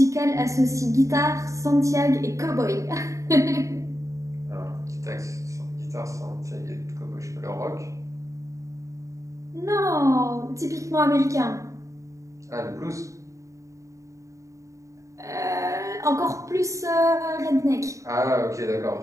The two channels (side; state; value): left; late; 0.15 ms